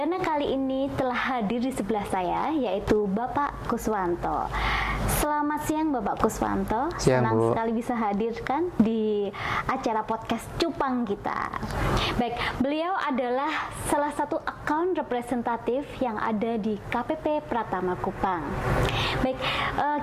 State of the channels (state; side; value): identical; both; correlation 1.00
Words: kali ini telah hadir di sebelah saya, yaitu Bapak Kuswanto. Selamat siang Bapak Kuswanto, senang sekali bisa hadirkan di acara podcast Cupang kita. Baik, beliau adalah salah satu account representatif yang ada di KPP Pratama Kupang. Baik,